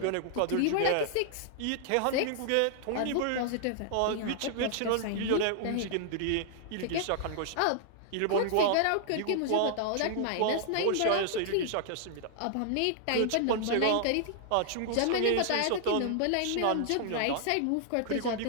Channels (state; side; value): different; both; correlation 0.00